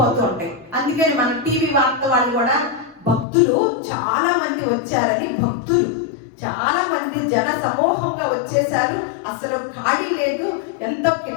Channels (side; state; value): right; drops out; at 3.2 s